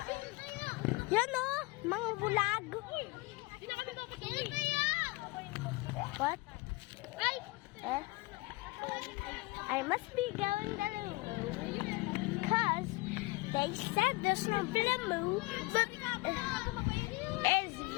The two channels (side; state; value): right; quieter; 23.1 dB